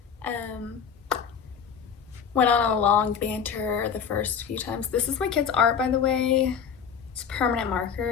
Went on a long banter the first few times. This is my kid's art, by the way. It's permanent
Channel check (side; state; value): right; quieter; 7.1 dB